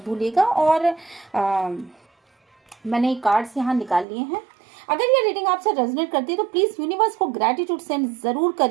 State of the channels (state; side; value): drops out; left; at 4.0 s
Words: भूलिएगा। और मैंने कार्ड्स यहाँ निकाल लिए हैं। अगर ये रीडिंग आपसे रेजोनेट करती है तो प्लीज़ यूनिवर्स को ग्रैटिट्यूड सेंड ज़रूर